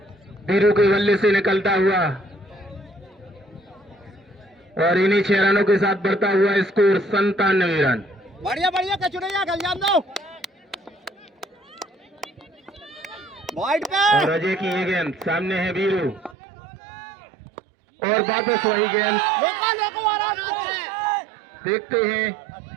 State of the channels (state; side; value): drops out; left; at 16.4 s